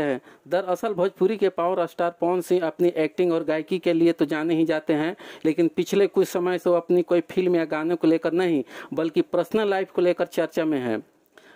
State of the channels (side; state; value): both; identical; correlation 1.00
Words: दरअसल भोजपुरी के पावर स्टार पवन सिंह अपनी एक्टिंग और गायकी के लिए तो जाने ही जाते हैं, लेकिन पिछले कुछ समय से वो अपनी कोई फिल्म या गानों को लेकर नहीं बल्कि पर्सनल लाइफ को लेकर चर्चा में है।